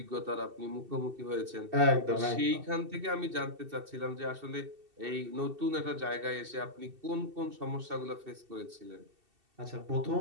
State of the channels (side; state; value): left; late; 2.7 ms